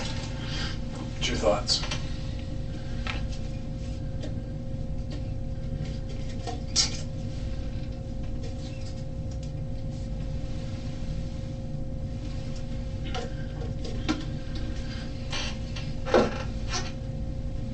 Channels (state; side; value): identical; both; correlation 1.00